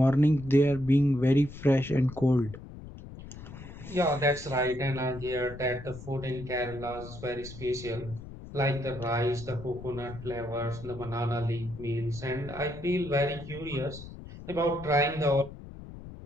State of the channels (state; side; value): noise; left; rumble, 14 dB below the sound